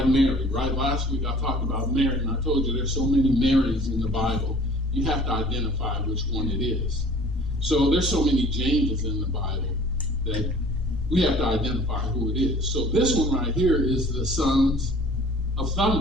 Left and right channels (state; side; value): normal; both; correlation 0.50